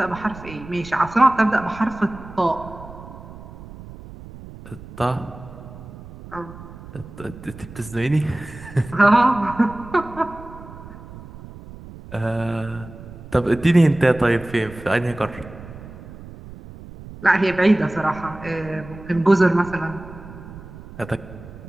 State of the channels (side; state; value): right; noise; rumble, 16 dB below the sound